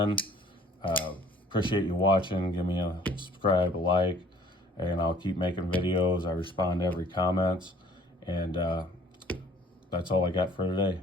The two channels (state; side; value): normal; both; correlation 0.55